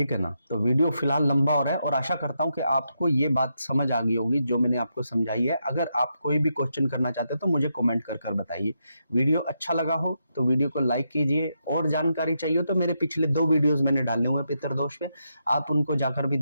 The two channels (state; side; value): inverted; both; correlation -0.83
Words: है ना। तो वीडियो फिलहाल लंबा हो रहा है और आशा करता हूं कि आपको ये बात समझ आ गई होगी जो मैंने आपको समझाई है। अगर आप कोई भी क्वेश्चन करना चाहते हो तो मुझे कमेंट कर बताइए। वीडियो अच्छा लगा हो तो वीडियो को लाइक कीजिए, और जानकारी चाहिए तो मेरे पिछले 2 वीडियोस मैंने डाले हुए पितृदोष पे, आप उनको जाकर भी